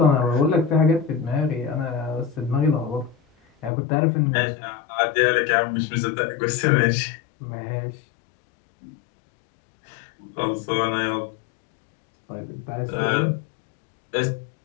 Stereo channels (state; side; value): drops out; right; at 3.7 s